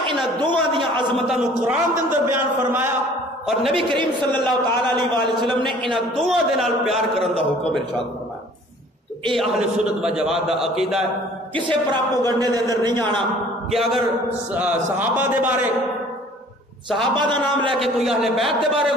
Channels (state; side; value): normal; both; correlation 0.52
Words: انہاں دوواں دیاں عظمتاں نو قرآن دے اندر بیان فرمایا اور نبی کریم صلی اللہ تعالی علیہ وآلہ وسلم نے انہاں دوواں دے نال پیار کرن دا حکم ارشاد فرمایا. تو اے اہل سنت و جماعت دا عقیدہ ہے. کسے پراپوگنڈے دے اندر نہیں آنا کہ اگر صحابہ دے بارے صحابہ دا نام لے کے کوئی اہل بیت دے بارے